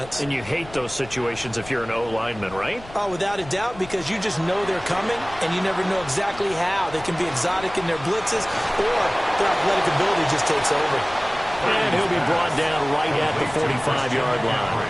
And you hate those situations if you're an O-lineman, right? Oh, without a doubt, because you just know they're coming, and you never know exactly how. They can be exotic in their blitzes, or their athletic ability just takes over. And he'll be brought down right at the 45-yard line.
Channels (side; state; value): left; noise; rumble, 18 dB below the sound